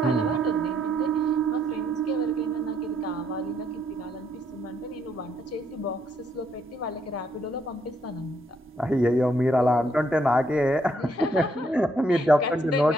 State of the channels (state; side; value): normal; both; correlation 0.72